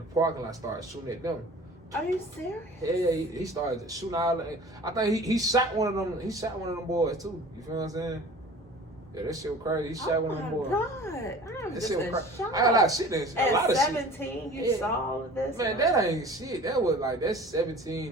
parking lot started shooting at them. Are you serious? Yeah, he started shooting all. I think he shot one of them. He shot one of them boys too. You feel what I'm saying? Yeah, that shit was crazy. He shot one of them boys. Oh my God, I'm just in shock. I got a lot of shit in At a lot of 17, shit. you saw all of this? Man, that ain't shit. That was like, that's 17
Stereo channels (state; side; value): normal; both; correlation 0.43